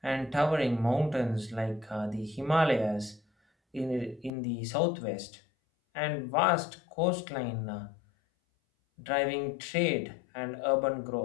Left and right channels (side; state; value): right; drops out; at 4.3 s